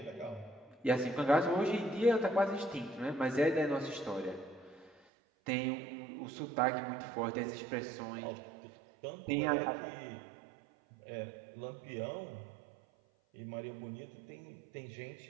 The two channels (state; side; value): drops out; left; at 5.0 s